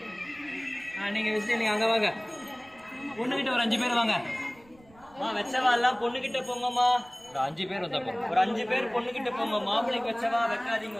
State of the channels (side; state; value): right; noise; rumble, 28 dB below the sound